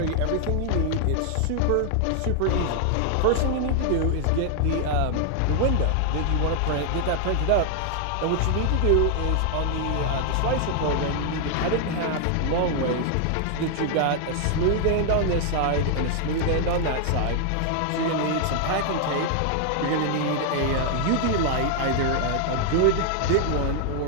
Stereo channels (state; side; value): different; both; correlation 0.00